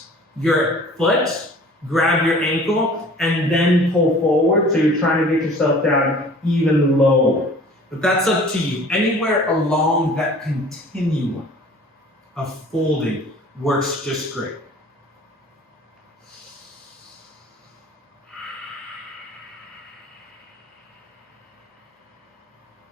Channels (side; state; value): both; normal; correlation 0.48